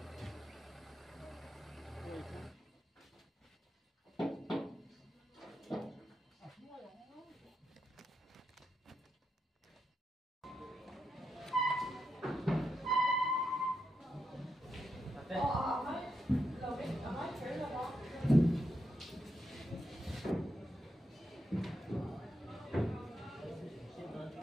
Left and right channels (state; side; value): normal; both; correlation 0.84